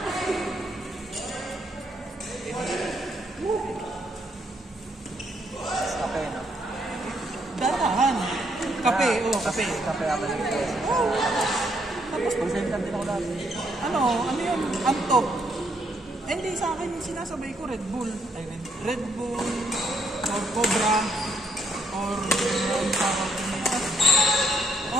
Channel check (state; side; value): normal; both; correlation 0.73